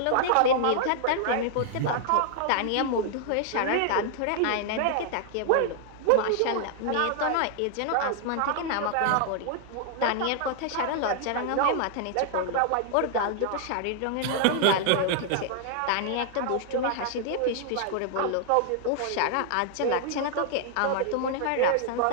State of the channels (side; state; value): both; different; correlation 0.00